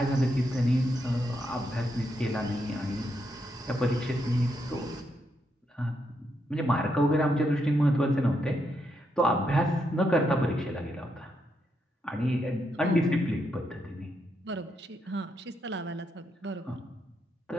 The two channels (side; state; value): both; normal; correlation 0.80